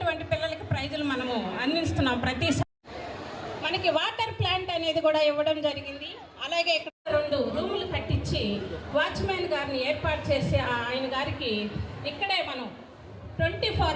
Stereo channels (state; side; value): identical; both; correlation 1.00